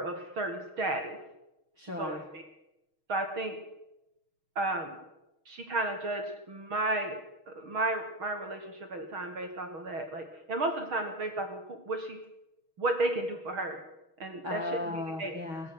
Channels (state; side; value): late; left; 6.3 ms